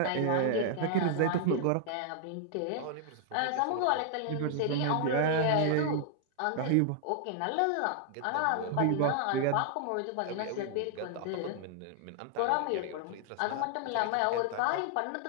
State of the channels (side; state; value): both; different; correlation 0.00